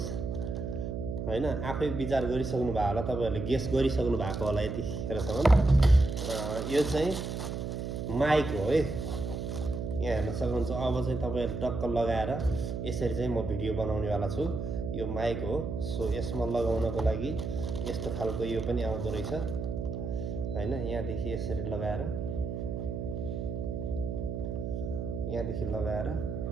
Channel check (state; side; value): noise; right; hum, 4 dB below the sound